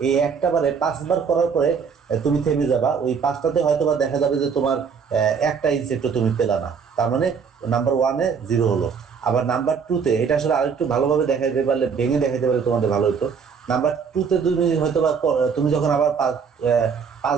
এই একটা বারে 5 বার করার পরে তুমি থেমে যাবা, ওই 5টাতে হয়তো বা দেখা যাবে যে তোমার একটা ইনসেক্টও তুমি পেলা না, তার মানে নাম্বার 1-এ 0 হলো। আবার নাম্বার 2-তে এটা আসলে আরেকটু ভালোভাবে দেখাইতে পারলে, ভেঙে দেখাইতে পারলে তোমাদের ভালো হতো। নাম্বার 2-তে তুমি হয়তো বা তুমি যখন আবার 5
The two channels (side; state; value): left; quieter; 6.2 dB